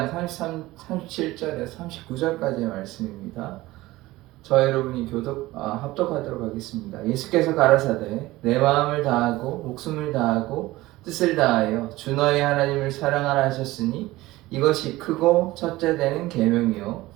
39절까지의 말씀입니다. 저와 여러분이 합독하도록 하겠습니다. 예수께서 가라사대 내 마음을 다하고 목숨을 다하고 뜻을 다하여 주 너의 하나님을 사랑하라 하셨으니 이것이 크고 첫째 되는 계명이요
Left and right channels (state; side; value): quieter; left; 18.3 dB